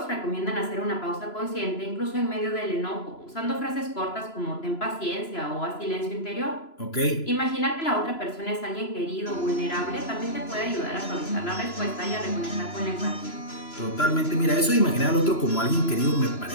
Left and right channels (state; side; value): late; right; 3.0 ms